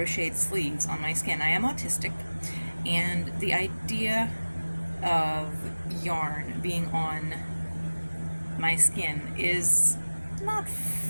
sleeves on my skin. I am autistic, and the idea of yarn being on my skin is not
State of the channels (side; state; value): both; inverted; correlation -1.00